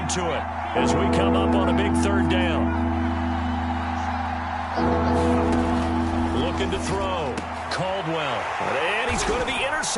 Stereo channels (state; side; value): identical; both; correlation 1.00